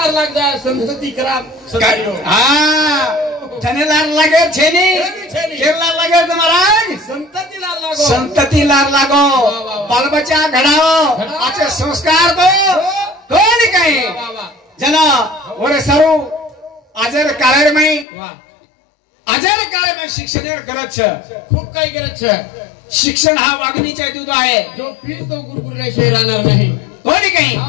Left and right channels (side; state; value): right; drops out; at 18.1 s